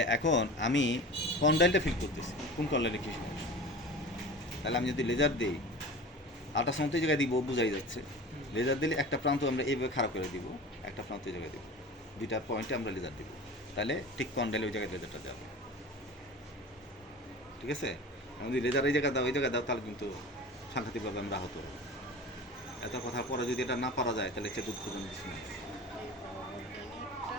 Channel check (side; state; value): both; normal; correlation 0.36